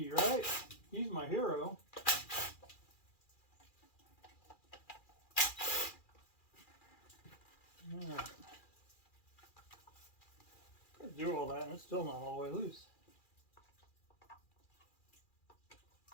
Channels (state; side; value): late; right; 2.4 ms